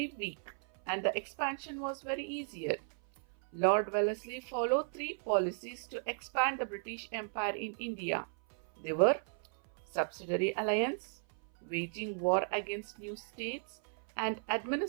weak and the expansion was very easier. Lord Wellesley followed three policies to expand the British Empire in India. They were subsidiary alliance, waging war against new states, and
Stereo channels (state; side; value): silent; left; 54 dB below the other